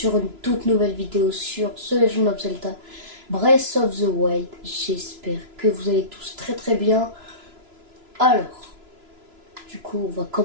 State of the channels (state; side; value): late; left; 3.0 ms